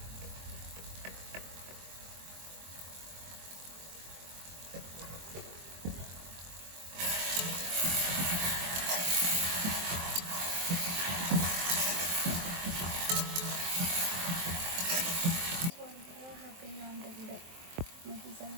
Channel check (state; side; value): late; left; 23 ms